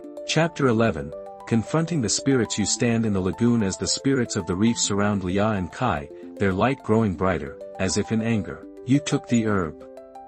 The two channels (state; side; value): identical; both; correlation 1.00